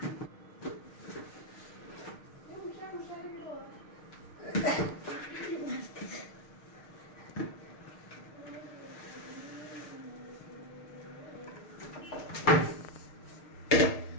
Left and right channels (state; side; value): late; right; 6.6 ms